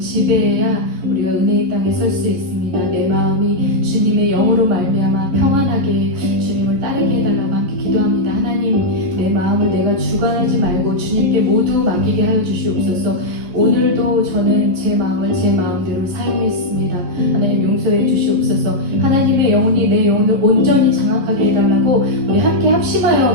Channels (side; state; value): left; late; 11 ms